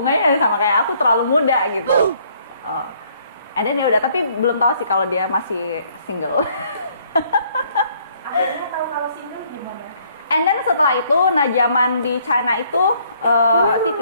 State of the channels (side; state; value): both; inverted; correlation -0.65